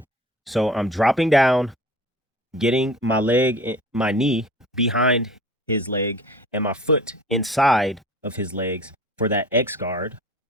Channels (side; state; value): both; normal; correlation 0.42